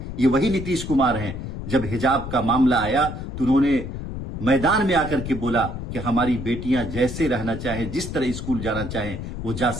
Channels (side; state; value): left; noise; rumble, 7 dB below the sound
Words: ये वही नीतीश कुमार हैं? जब हिजाब का मामला आया तो उन्होंने मैदान में आकर के बोला कि हमारी बेटियां जैसे रहना चाहें, जिस तरह स्कूल जाना चाहें वो जा